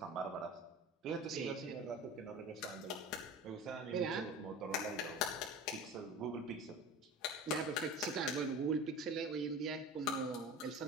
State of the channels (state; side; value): normal; both; correlation 0.35